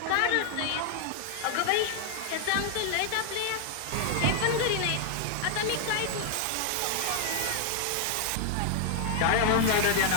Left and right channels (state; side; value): different; both; correlation 0.00